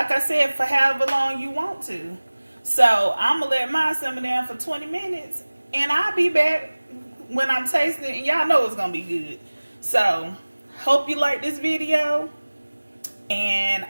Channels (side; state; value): both; inverted; correlation -1.00